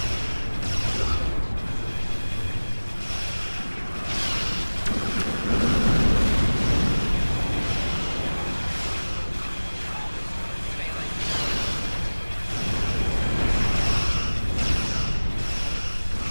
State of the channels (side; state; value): both; inverted; correlation -1.00